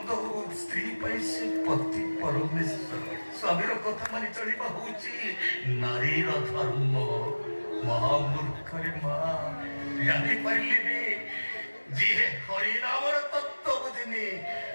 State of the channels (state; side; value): inverted; both; correlation -1.00